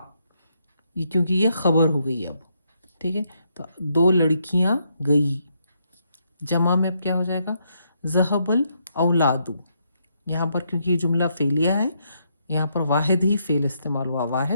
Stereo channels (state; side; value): inverted; both; correlation -0.77